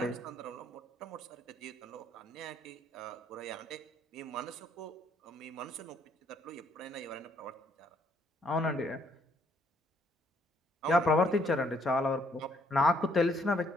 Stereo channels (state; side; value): normal; both; correlation 0.67